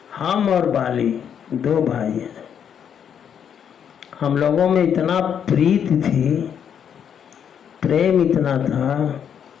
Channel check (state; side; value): quieter; right; 8.3 dB